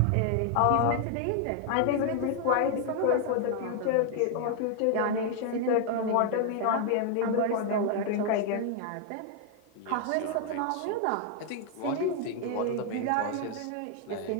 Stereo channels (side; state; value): both; different; correlation 0.00